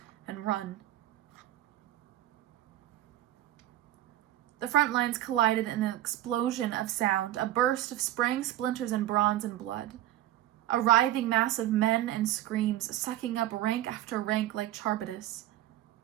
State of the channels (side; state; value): left; quieter; 13.8 dB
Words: and run. The front lines collided in an explosion of sound, a burst of spraying splinters and bronze and blood. A writhing mass of men and screams, sucking up rank after rank like Charybdis.